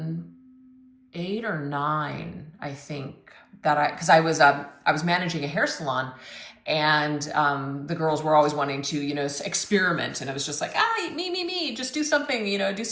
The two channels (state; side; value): identical; both; correlation 1.00